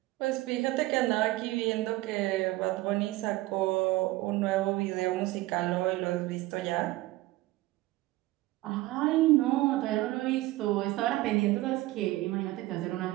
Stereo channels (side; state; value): left; quieter; 18.5 dB